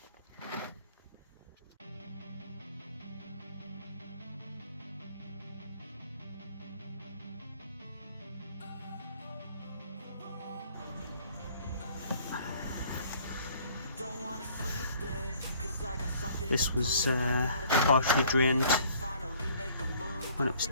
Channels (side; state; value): both; inverted; correlation -0.56